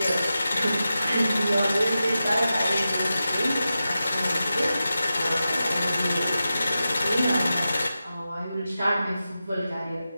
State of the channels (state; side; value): inverted; both; correlation -0.92